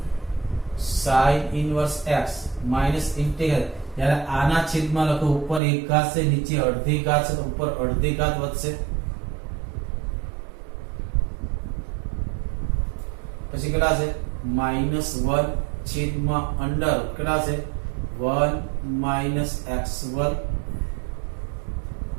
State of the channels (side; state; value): left; drops out; at 5.6 s